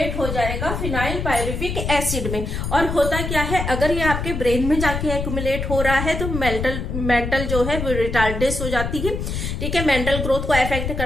हो जाएगा फिनाइल पायरुविक एसिड में। और होता क्या है, अगर ये आपके ब्रेन में जाके अकुमुलेट हो रहा है तो मेंटल जो है वो रिटार्डेस हो जाती है, ठीक है, मेंटल ग्रोथ को अफेक्ट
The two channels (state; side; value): noise; left; rumble, 3 dB below the sound